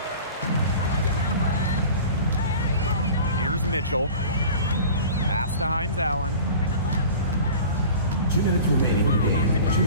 Here's Mitchell. Pass to Hines Allen. 2 minutes remaining in the game. 2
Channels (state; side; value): inverted; both; correlation -0.40